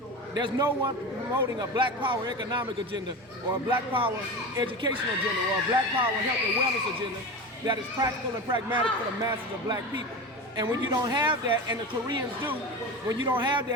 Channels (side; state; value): both; normal; correlation 0.26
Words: There's no one promoting a black power economic agenda or a black power educational agenda or a black power health and wellness agenda that is practical and pragmatic for the masses of black people. And when you don't have that, and the Koreans do, when you don't have